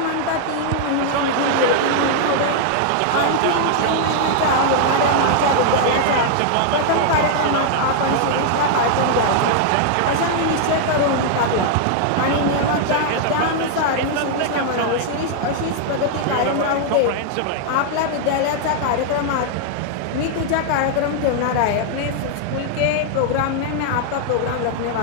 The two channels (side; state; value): both; different; correlation 0.00